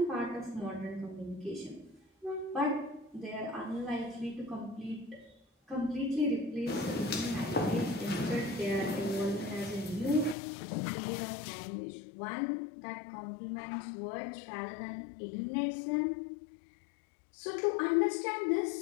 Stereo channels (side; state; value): right; drops out; at 10.4 s